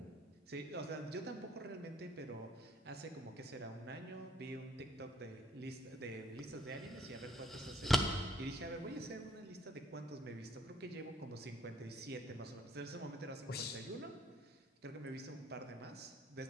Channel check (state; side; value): normal; both; correlation 0.64